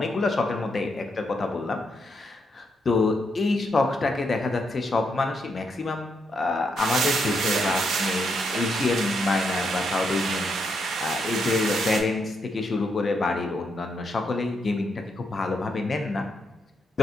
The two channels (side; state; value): both; normal; correlation 0.79